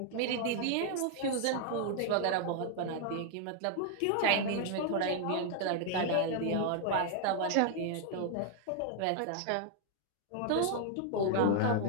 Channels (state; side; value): different; both; correlation 0.00